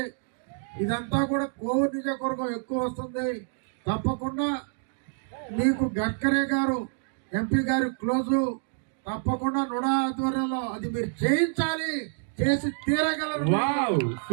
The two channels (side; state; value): left; silent; digital silence